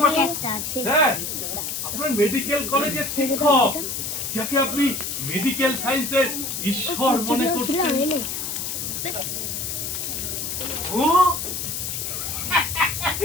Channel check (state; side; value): noise; left; hiss, 4 dB below the sound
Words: বসো? স্যার, আপনার মেডিকেল কলেজের শিক্ষক, যাকে আপনি মেডিকেল সায়েন্সের ঈশ্বর মনে করছেন। ও